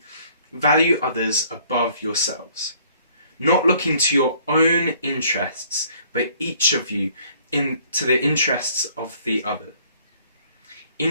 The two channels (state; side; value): inverted; both; correlation -0.60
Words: value others above yourselves, not looking to your own interests, but each of you to the interests of the other.